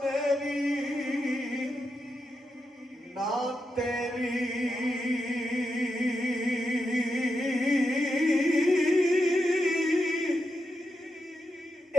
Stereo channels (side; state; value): both; normal; correlation 0.86